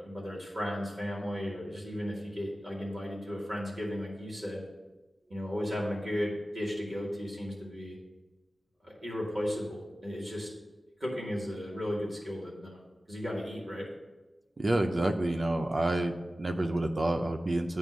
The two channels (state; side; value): normal; both; correlation 0.95